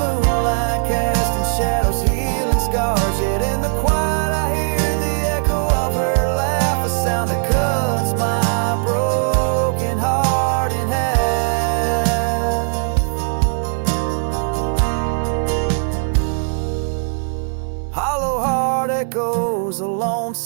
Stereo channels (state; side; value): silent; left; 63 dB below the other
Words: casting shadows, healing scars. Yet in the quiet I hear the echo of her laugh, a sound that cuts my broken heart in half. Hollow heart echoes a